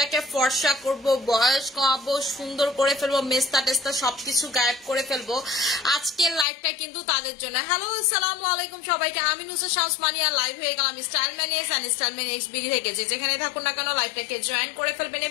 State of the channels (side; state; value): right; drops out; at 6.5 s